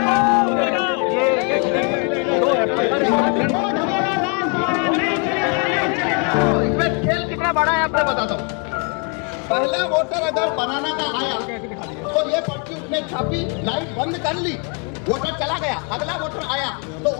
इसमें खेल कितना बड़ा है आपको बताता हूँ। पहला वोटर अगर बनाना का आया तो ये पर्ची उसने छापी, लाइट बंद कर ली, वोटर चला गया। अगला वोटर आया तो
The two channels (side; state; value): right; quieter; 35.5 dB